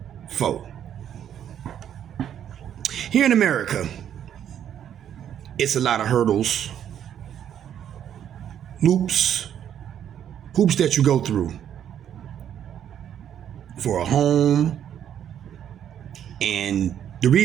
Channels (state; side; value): quieter; left; 9.7 dB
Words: fore. Here in America, it's a lot of hurdles, hoops that you go through for a home. And the